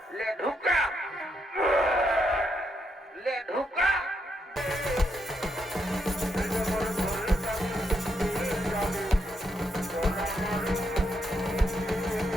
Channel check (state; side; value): normal; both; correlation 0.79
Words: ले ढुका ले ढुका